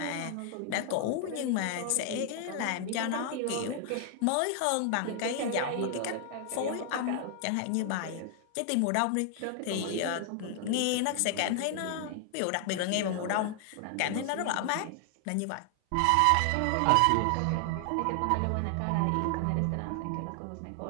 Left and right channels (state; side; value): different; both; correlation 0.00